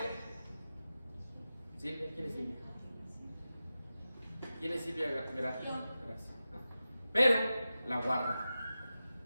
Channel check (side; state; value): both; inverted; correlation -0.93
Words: Silvia, ¿quién es Silvia? ¿Quién es Silvia? Gracias. Pero la guarda